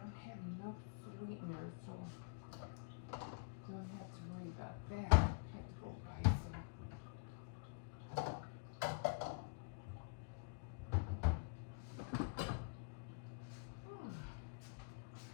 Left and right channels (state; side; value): quieter; right; 33.4 dB